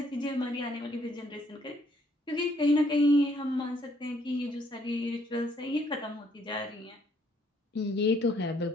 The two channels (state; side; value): normal; both; correlation 0.67